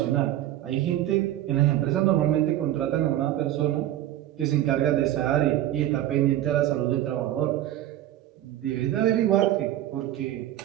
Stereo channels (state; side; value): quieter; left; 13.2 dB